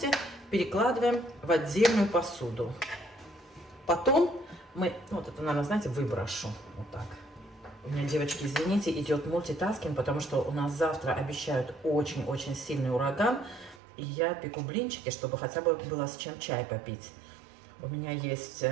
перекладываем в отдельную посуду. Потом мы, вот это, наверное, знаете, выброшу. Вот так. У меня, девочки, извините, идет мультитаскинг, потому что у нас завтра обещают очень-очень сильный ураган. И я пеку блинчики, чтобы хотя бы было с чем чай попить. У меня есть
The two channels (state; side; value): drops out; left; at 13.8 s